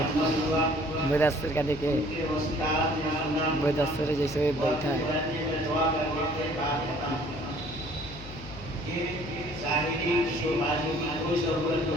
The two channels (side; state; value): left; noise; hum, 15 dB below the sound